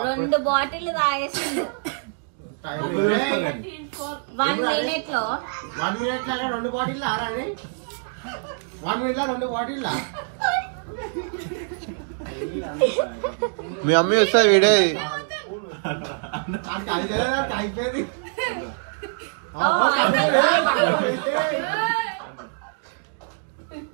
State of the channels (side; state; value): left; silent; 62 dB below the other